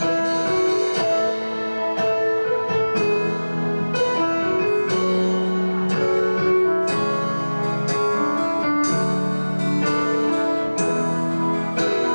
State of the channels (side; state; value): both; inverted; correlation -1.00